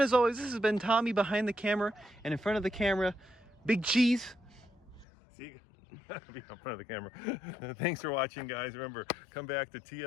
always, this has been Tommy behind the camera, and in front of the camera, Big Cheese. See, in front of the camera. Thanks for watching, guys. Remember, come back to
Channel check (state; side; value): drops out; right; at 5.1 s